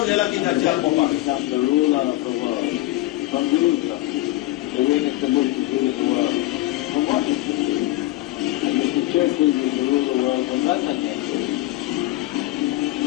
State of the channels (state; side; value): quieter; right; 17.2 dB